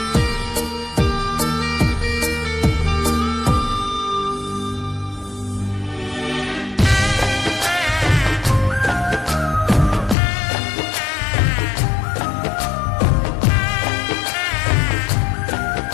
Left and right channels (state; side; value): drops out; right; at 10.2 s